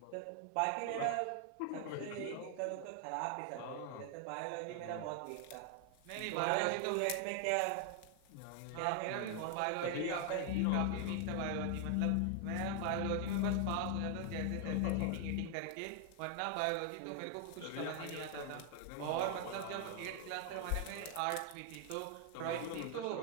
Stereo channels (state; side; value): different; both; correlation 0.00